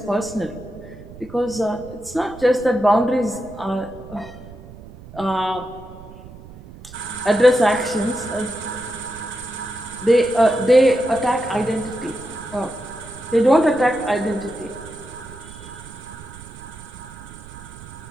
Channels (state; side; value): noise; right; rumble, 17 dB below the sound